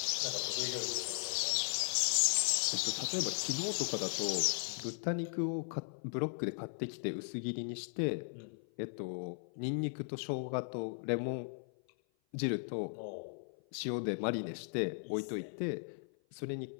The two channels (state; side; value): silent; right; 53 dB below the other